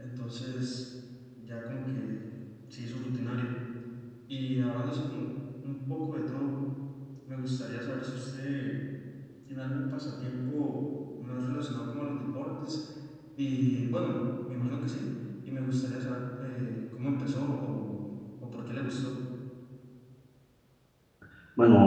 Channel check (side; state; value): both; identical; correlation 1.00